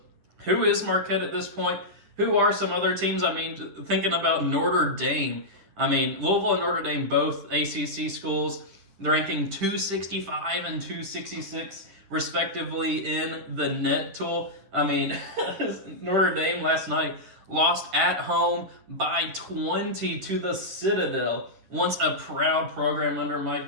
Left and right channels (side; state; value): left; late; 10 ms